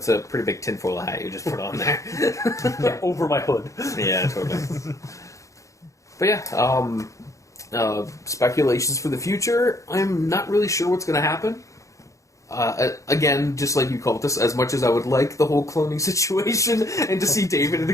a pretty big tinfoil hat you just put on there. Over my hood. Yeah, totally. But yeah, speculations for the future. I'm not really sure what's going to happen. Again, just like you called this, as much as I would like the whole cloning situation and to see David at the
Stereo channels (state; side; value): late; right; 0.15 ms